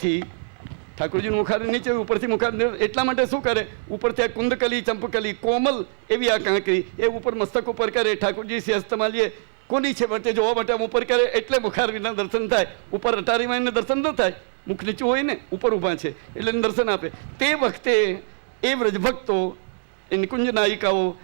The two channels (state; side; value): silent; left; digital silence